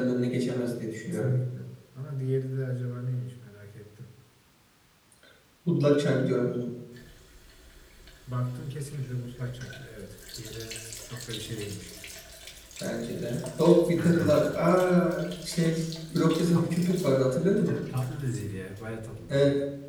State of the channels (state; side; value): identical; both; correlation 1.00